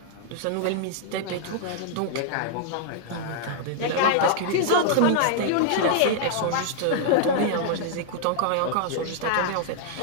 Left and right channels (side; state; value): both; different; correlation -0.01